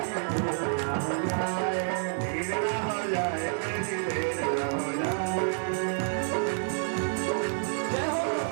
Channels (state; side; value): silent; left; 59 dB below the other